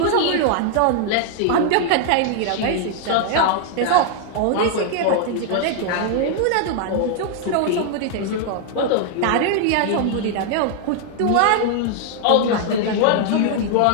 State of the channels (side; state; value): both; different; correlation 0.00